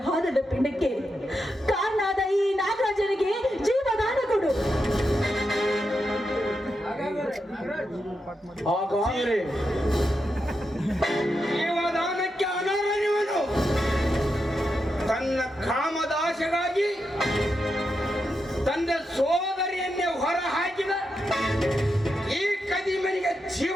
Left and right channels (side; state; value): both; normal; correlation 0.86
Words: ಹಾದದ ಪಿಂಡಕ್ಕೆ ಕಾರಣಾದ ಈ ನಾಗರಾಜನಿಗೆ ಜೀವದಾನ ಕೊಡು. ಹಾಗಾದ್ರೆ ಜೀವದಾನಕ್ಕೆ ಅನರ್ಹನಿವನು. ತನ್ನ ಕಾಮದಾಶೆಗಾಗಿ ತಂದೆ ಸೋದರಿಯನ್ನೇ ಹೊರ ಹಾಕಿದ ಈ ಕದಿಮನಿಗೆ